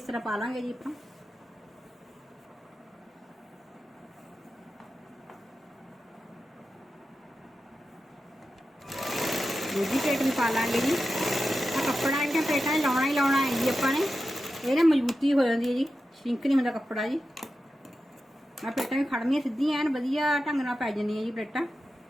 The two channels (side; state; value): both; normal; correlation 0.91